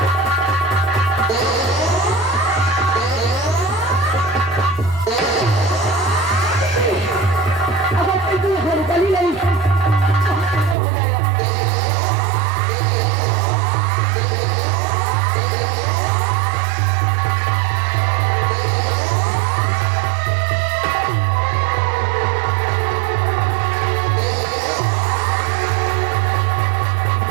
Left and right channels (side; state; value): left; drops out; at 10.8 s